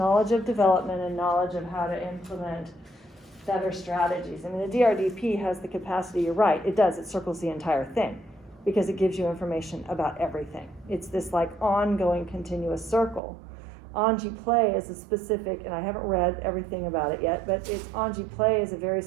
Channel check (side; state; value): left; drops out; at 13.2 s